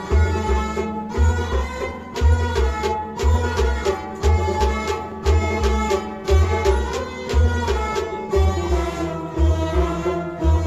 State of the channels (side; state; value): both; identical; correlation 1.00